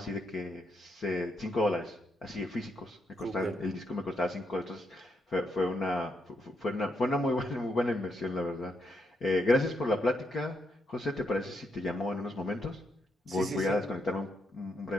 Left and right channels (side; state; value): both; normal; correlation 0.79